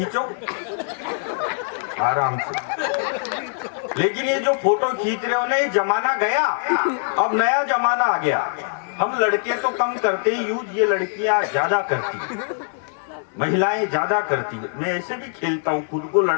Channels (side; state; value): right; silent; digital silence